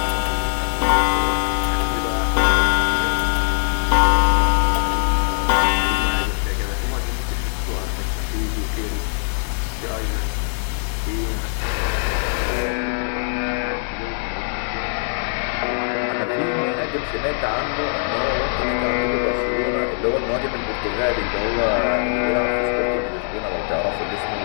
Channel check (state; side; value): silent; right; 65 dB below the other